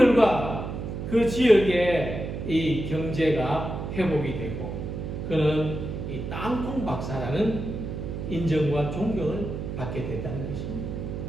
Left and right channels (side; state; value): right; noise; hum, 5 dB below the sound